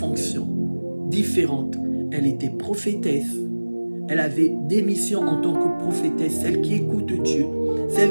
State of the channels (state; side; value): inverted; both; correlation -1.00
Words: différentes. Elle était prophétesse. Elle avait des missions en tant que prophétesse, celle qui écoute Dieu,